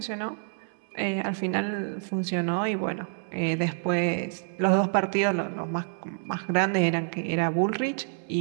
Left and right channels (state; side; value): silent; left; 60 dB below the other